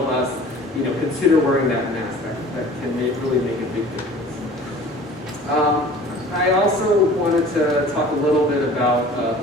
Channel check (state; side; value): normal; both; correlation 0.45